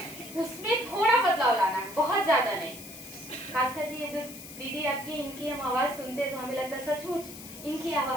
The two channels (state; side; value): noise; left; hiss, 14 dB below the sound